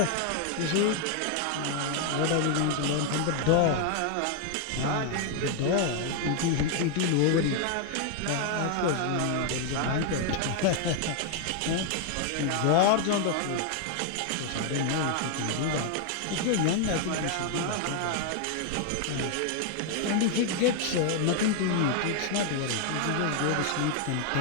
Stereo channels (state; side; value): different; both; correlation 0.00